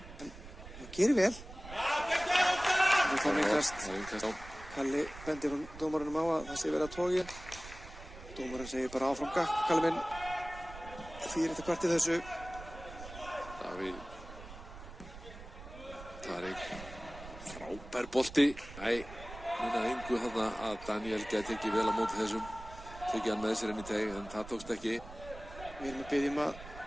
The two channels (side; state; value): right; noise; rumble, 15 dB below the sound